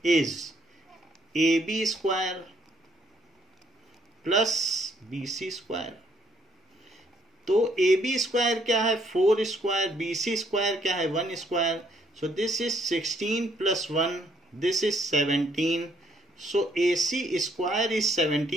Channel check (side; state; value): both; normal; correlation 0.69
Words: is AB square plus BC square. तो AB स्क्वायर क्या है 4 स्क्वायर, BC स्क्वायर क्या है 1 square. So this is 16 plus 1, this is 17। So AC square is